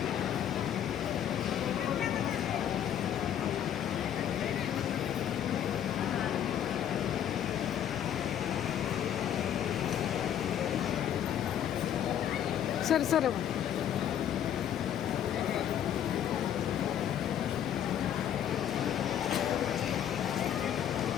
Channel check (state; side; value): quieter; right; 10.0 dB